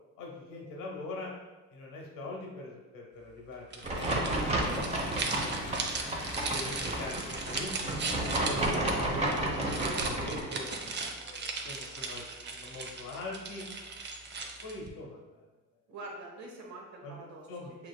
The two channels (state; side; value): normal; both; correlation 0.12